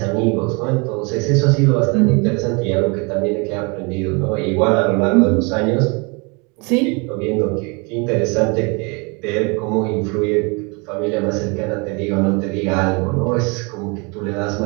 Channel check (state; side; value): quieter; left; 30.5 dB